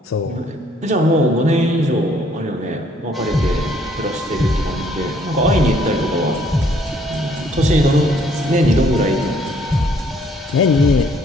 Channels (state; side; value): normal; both; correlation 0.64